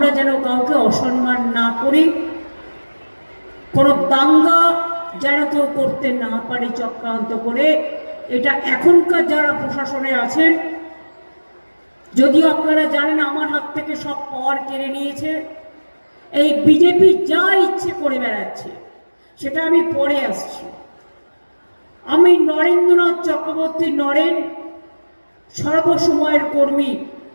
যেন কাউকে অসম্মান না করি, কোনো দাঙ্গা যেন কেউ করতে না পারে চক্রান্ত করে। এটা এখনকার যারা প্রশাসনে আছেন, যদিও আপনারা জানেন আমার হাত থেকে সব পাওয়ার কেড়ে নিয়েছে, এই বিজেপি যা ইচ্ছে করে বেড়াচ্ছে, সেটা আমি পরে আসছি। আমি নরেন্দ্রনাথ চক্রবর্তী নরেন সর্বসময়ের কর্মী,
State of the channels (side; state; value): both; inverted; correlation -1.00